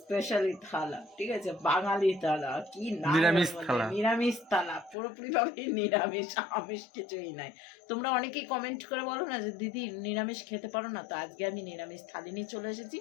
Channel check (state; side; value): drops out; right; at 5.0 s